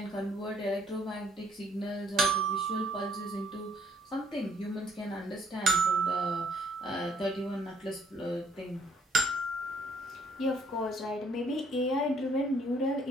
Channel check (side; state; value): both; normal; correlation 0.64